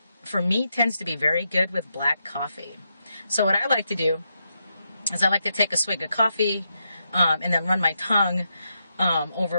for me, tends to be very good with black coffee. So what I like to do is I like to take a swig of coffee, and then run my tongue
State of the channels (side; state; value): both; inverted; correlation -0.84